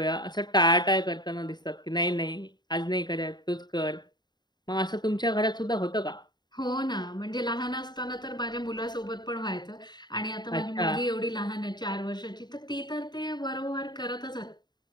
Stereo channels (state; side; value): late; right; 0.21 ms